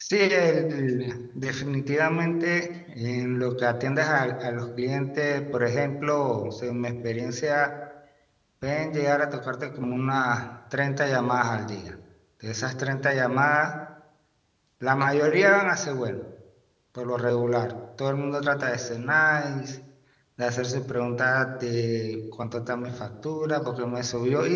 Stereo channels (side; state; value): both; identical; correlation 1.00